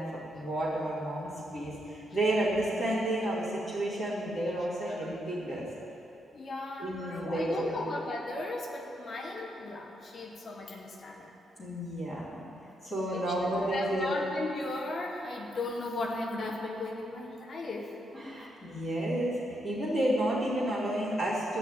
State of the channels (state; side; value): normal; both; correlation 0.79